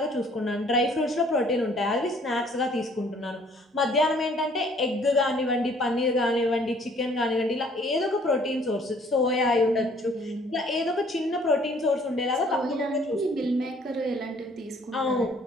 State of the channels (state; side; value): normal; both; correlation 0.59